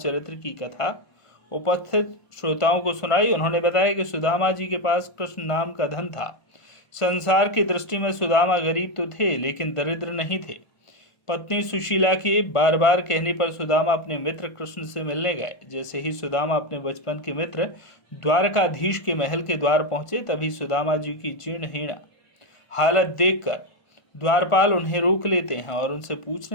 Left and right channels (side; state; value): right; late; 1.4 ms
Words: की कथा उपस्थित श्रोताओं को सुनाई। उन्होंने बताया कि सुदामा जी के पास कृष्ण नाम का धन था। संसार की दृष्टि में सुदामा गरीब तो थे, लेकिन दरिद्र नहीं थे। पत्नी सुशीला के बार बार कहने पर सुदामा अपने मित्र कृष्ण से मिलने गए। जैसे ही सुदामा अपने बचपन के मित्र द्वारकाधीश के महल के द्वार पहुंचे, तभी सुदामा जी की जीर्णहीन हालत देखकर द्वारपाल उन्हें रोक लेते हैं और उनसे